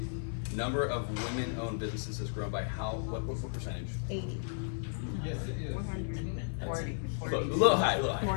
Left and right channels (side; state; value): right; silent; digital silence